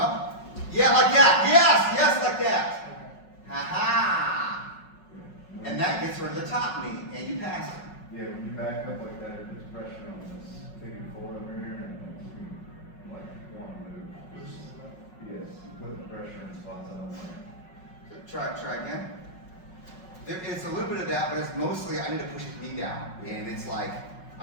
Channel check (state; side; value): late; right; 5.4 ms